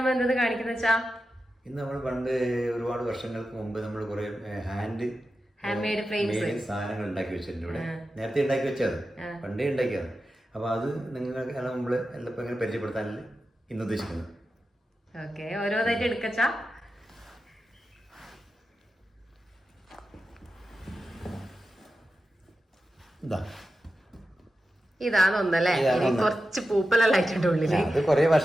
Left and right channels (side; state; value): both; normal; correlation 0.92